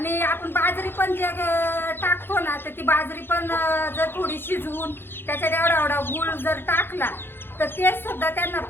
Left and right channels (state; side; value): late; right; 0.10 ms